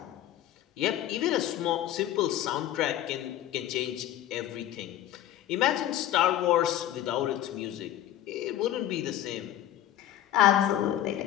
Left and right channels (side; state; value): right; quieter; 12.4 dB